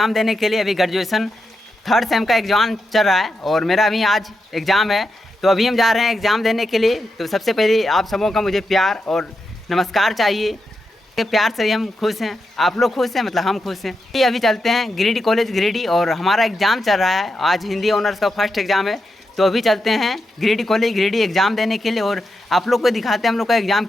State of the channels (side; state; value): both; normal; correlation 0.86